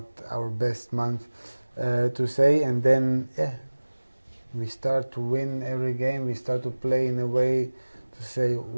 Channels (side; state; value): both; inverted; correlation -1.00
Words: our best month to say, and then we start to win every game. We start to play in a way to say,